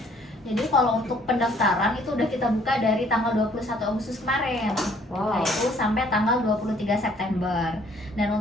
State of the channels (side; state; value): both; normal; correlation 0.61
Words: Jadi kalau untuk pendaftaran itu udah kita buka dari tanggal 21 Agustus kemarin. Wow. Nah, itu sampai tanggal 23 September. Dan